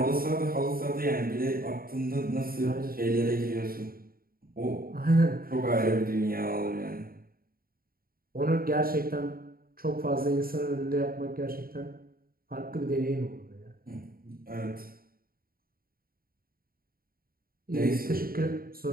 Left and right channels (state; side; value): late; left; 0.43 ms